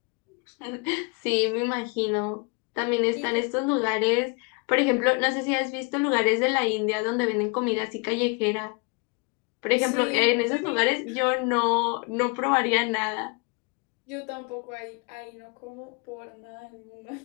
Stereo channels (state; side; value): quieter; right; 31.3 dB